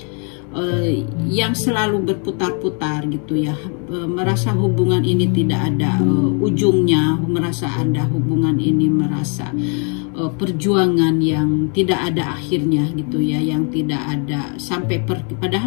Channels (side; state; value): right; quieter; 39.5 dB